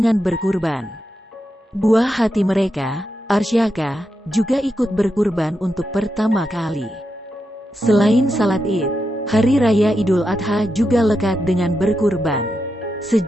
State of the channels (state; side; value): normal; both; correlation 0.86